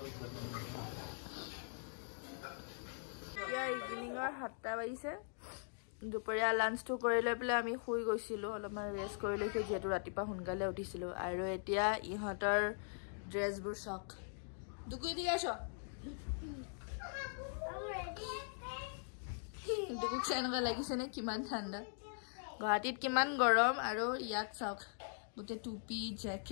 এতিয়া ইভিনিঙৰ 7টা বাজিছে দুপৰীয়া লাঞ্চটো কৰি লৈ পেলাই আমি শুই গৈছিলোঁ অলপমান ৰেষ্ট কৰি লৈছোঁ যিহেতু ৰাতিপুৱা সোনকালে উঠিছিলোঁ আৰু এতিয়া ইহঁতৰ ড্ৰেছবোৰ চাওক দুকুই দি আছ দুকুক এনেকুৱা লাগিছেনে কিমান ঠাণ্ডা গুৱাহাটীত কিমান গৰম আৰু ইয়াত চাওক গোটেই টুপি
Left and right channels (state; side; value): silent; right; digital silence